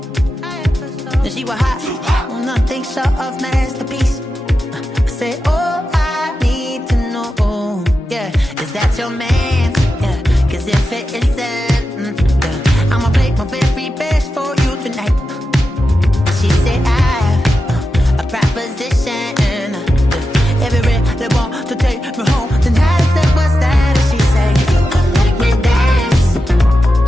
And she was hot. Well, nothing short of masterpiece. I said, oh, I need to know. Yeah, is that your man? Yeah, cause if it isn't, yeah, I'ma play my very best for you tonight. She said I have a proposition. Every they want to take me home tonight. I said, what's that? And she said, if you can make me dance,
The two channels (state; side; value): normal; both; correlation 0.90